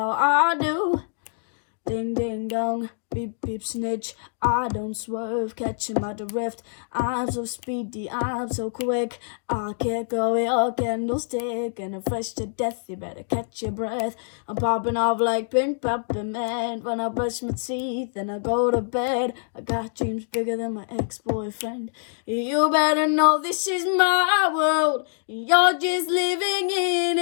I do. Ding, ding, dong, beep, beep, snitch. I don't swerve, catch him at the rift. I'm so speedy, I'm so quick. I can't go your candlestick. And I'm fresh to death, you better catch your breath. I'm popping off like pink peppermint. When I brush my teeth and I go to bed, I got dreams bigger than my ex-boyfriend. You better know this is my world. You're just living in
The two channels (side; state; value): right; silent; digital silence